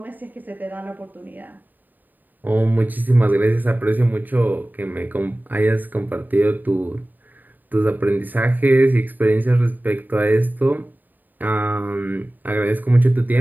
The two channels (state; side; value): late; left; 0.088 ms